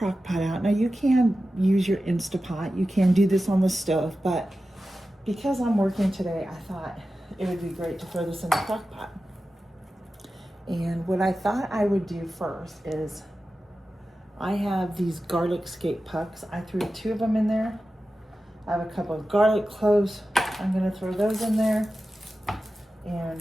pot out. Now you can use your Instapot. You can do this on the stove, but because I'm working today, I thought it would be great to throw this in the crock pot. And what I thought I would do first is I have these garlic skate pucks. I threw 2 of them in there. I have a couple of garlic cloves. I'm gonna throw those in there. And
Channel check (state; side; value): normal; both; correlation 0.93